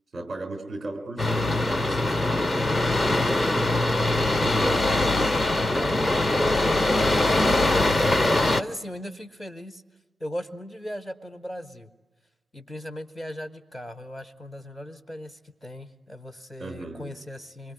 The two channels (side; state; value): both; normal; correlation 0.89